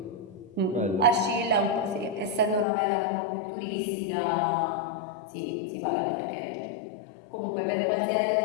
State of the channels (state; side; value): drops out; right; at 2.7 s